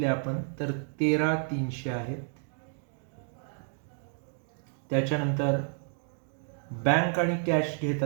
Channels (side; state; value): left; silent; 57 dB below the other